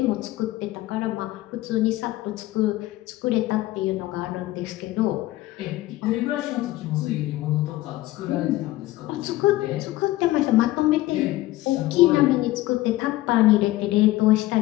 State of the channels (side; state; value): right; quieter; 17.0 dB